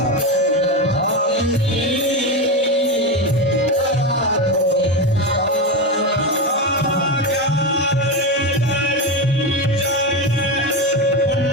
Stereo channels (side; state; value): both; normal; correlation 0.16